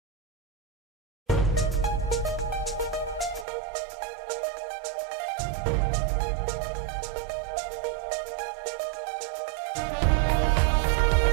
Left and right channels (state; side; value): drops out; left; at 3.5 s